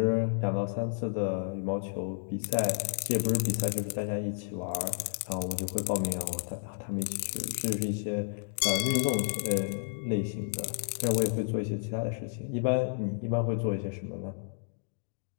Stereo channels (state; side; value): silent; right; digital silence